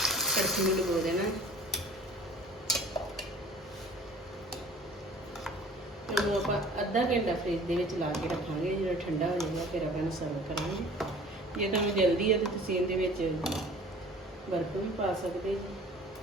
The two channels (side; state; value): both; normal; correlation 0.47